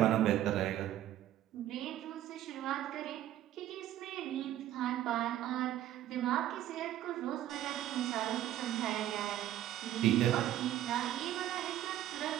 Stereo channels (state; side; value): quieter; left; 12.7 dB